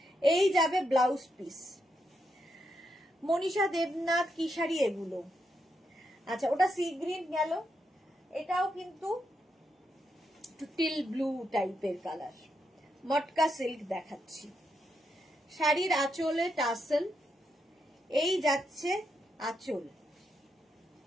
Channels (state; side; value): normal; both; correlation 0.82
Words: এই যাবে ব্লাউজ পিস। মনীষা দেবনাথ, কি শাড়ি এগুলো? আচ্ছা, ওটা সি গ্রিন গেল, এটাও কিন্তু টিল ব্লু টাইপের কালার। মটকা সিল্ক দেখাচ্ছি। শাড়ির আঁচলে টাসেল, এই যাচ্ছে আঁচল,